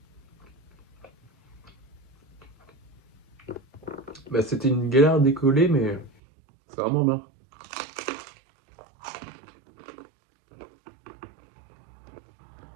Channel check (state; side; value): drops out; left; at 6.1 s